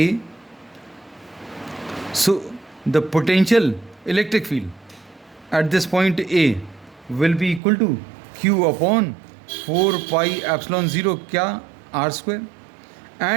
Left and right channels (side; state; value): left; drops out; at 7.6 s